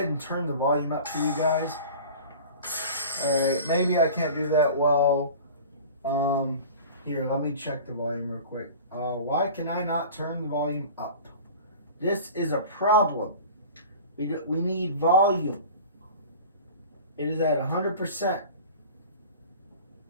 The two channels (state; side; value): inverted; both; correlation -0.39